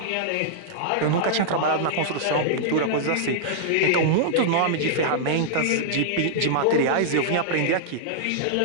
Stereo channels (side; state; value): both; different; correlation -0.02